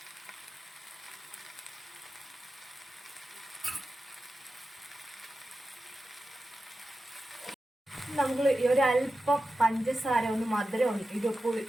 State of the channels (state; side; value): normal; both; correlation 0.92